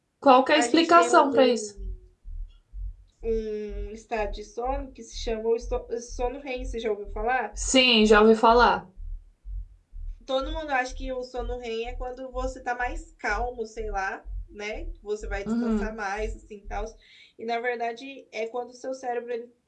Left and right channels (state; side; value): identical; both; correlation 1.00